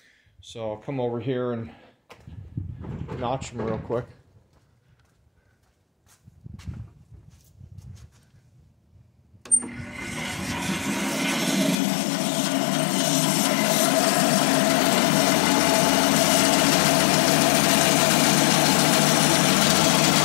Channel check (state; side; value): drops out; right; at 11.8 s